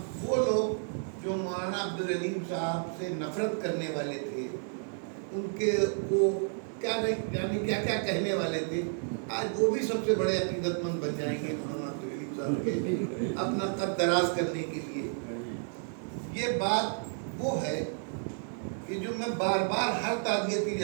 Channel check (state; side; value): silent; left; 57 dB below the other